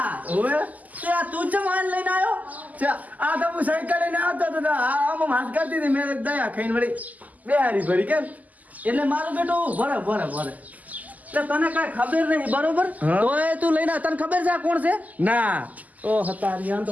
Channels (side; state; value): left; late; 0.079 ms